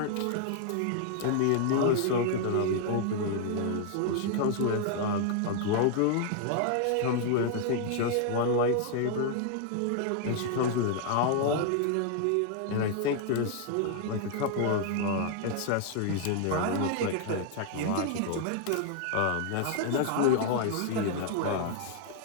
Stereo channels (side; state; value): both; different; correlation 0.00